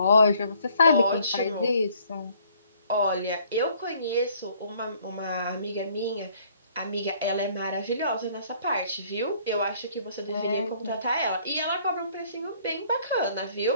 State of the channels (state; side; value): inverted; both; correlation -0.61